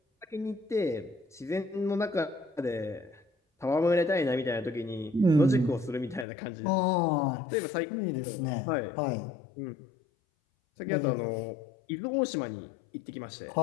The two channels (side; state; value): right; drops out; at 6.2 s